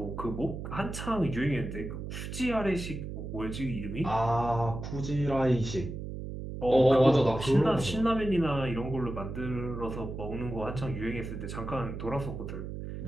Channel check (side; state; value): right; noise; hum, 7 dB below the sound